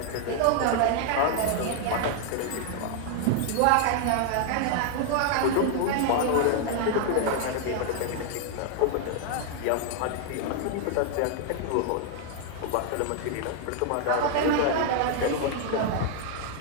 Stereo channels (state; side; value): different; both; correlation 0.00